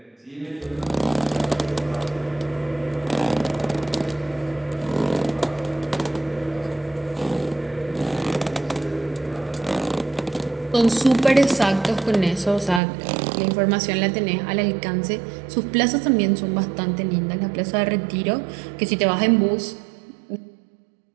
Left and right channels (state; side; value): drops out; left; at 12.8 s